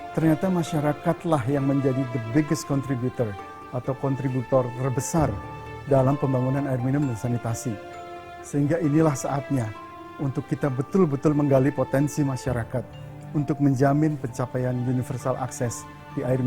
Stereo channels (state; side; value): identical; both; correlation 1.00